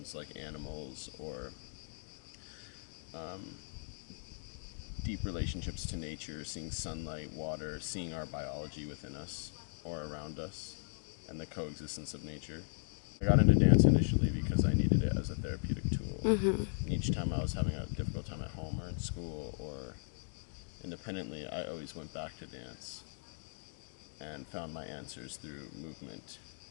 like animals, or deep relationships to nature, seeing sunlight, water, seeing our biology within us or around us, and the coexistence of nature. I got into dance initially because I needed it as a therapeutic tool. Each time I was having a difficult time at home or in school or independently, I always went back to dance and found my answers through movement,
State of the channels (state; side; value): silent; right; digital silence